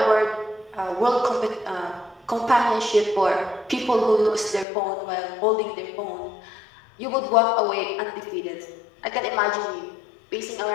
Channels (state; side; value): drops out; right; at 4.7 s